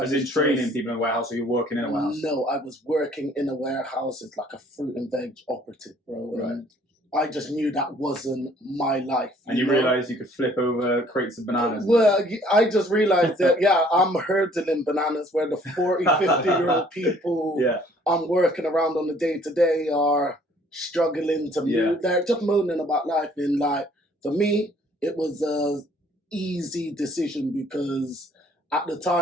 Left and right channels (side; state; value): both; normal; correlation 0.59